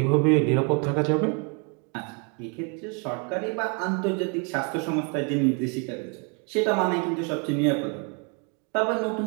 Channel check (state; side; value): quieter; left; 34.6 dB